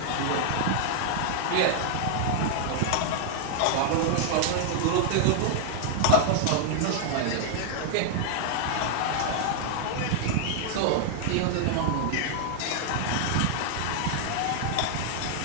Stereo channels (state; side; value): different; both; correlation -0.01